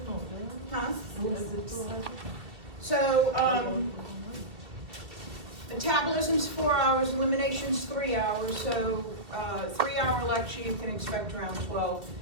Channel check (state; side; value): late; left; 2.2 ms